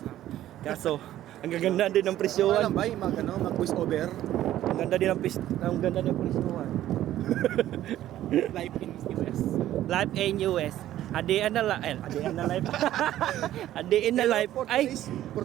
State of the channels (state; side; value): quieter; left; 13.1 dB